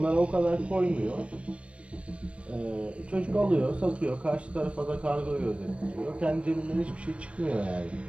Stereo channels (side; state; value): left; late; 0.061 ms